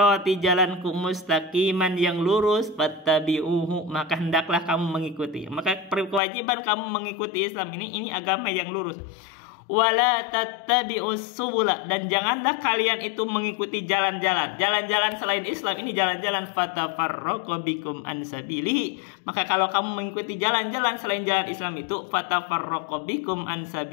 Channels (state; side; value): drops out; right; at 6.2 s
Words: jalanku, mustaqiman, yang lurus, fattabi'uhu, maka hendaklah kamu mengikuti. Maka kewajiban kamu mengikuti Islam ini agama yang lurus. Wala tattabi'us subula, dan janganlah kalian itu mengikuti jalan-jalan selain Islam ini, jalan-jalan, fatafarraqa bikum an sabilihi, maka kalau kamu mengikuti jalan-jalan selain jalan Islam itu, fatafarraqa bikum an